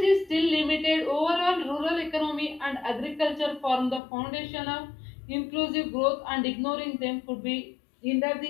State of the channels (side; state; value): right; drops out; at 4.0 s